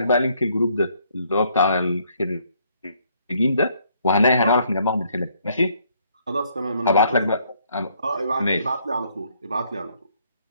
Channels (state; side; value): inverted; both; correlation -0.68